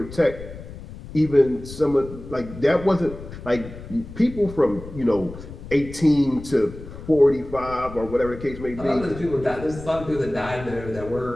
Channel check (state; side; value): noise; left; rumble, 13 dB below the sound